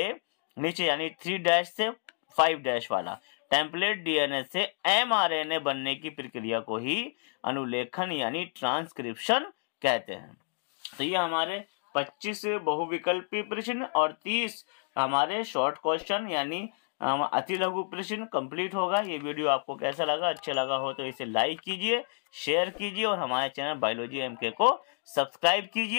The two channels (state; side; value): silent; right; 58 dB below the other